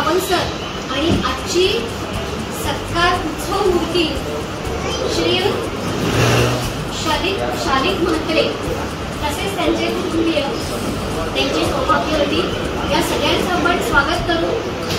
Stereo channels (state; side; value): identical; both; correlation 1.00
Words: सर आणि आजची सत्कार उत्सव मूर्ती श्री शालिक म्हात्रे, तसेच त्यांचे कुटुंबीय, त्यांचे सौभाग्यवती, या सगळ्यांचं आपण स्वागत करू.